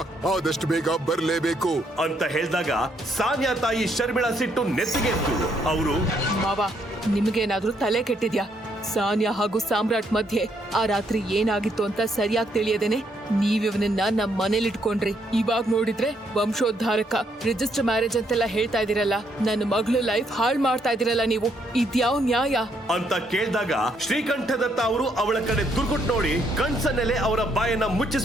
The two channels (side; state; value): both; normal; correlation 0.73